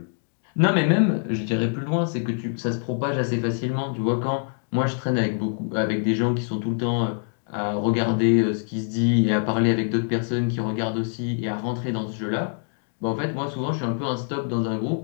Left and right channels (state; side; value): silent; right; 62 dB below the other